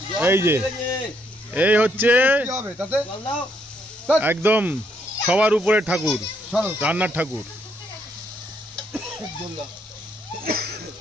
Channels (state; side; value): normal; both; correlation 0.73